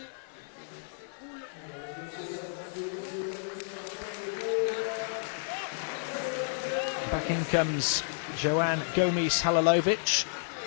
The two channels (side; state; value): right; silent; digital silence